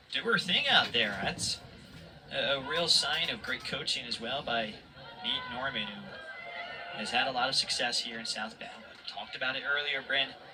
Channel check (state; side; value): identical; both; correlation 1.00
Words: do her thing out there. That's a real sign of great coaching as well by Nate Norman, who has had a lot of success here in South Bend. Talked about it earlier, Bryn.